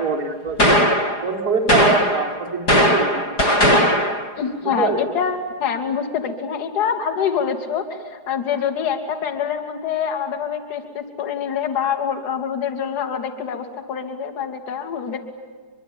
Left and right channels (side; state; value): right; late; 4.9 ms